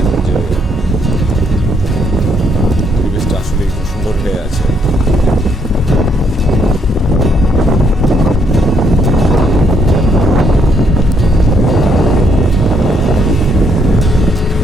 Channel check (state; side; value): normal; both; correlation 0.72